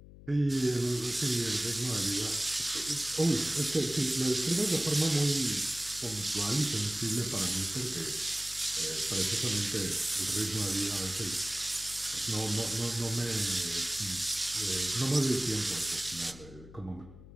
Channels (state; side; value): noise; left; hum, 18 dB below the sound